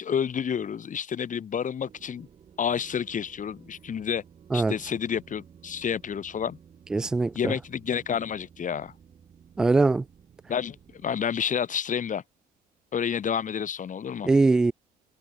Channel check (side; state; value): both; normal; correlation 0.60